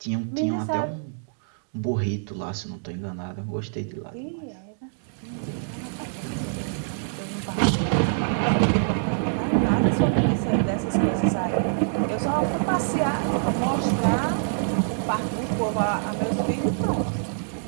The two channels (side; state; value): left; silent; digital silence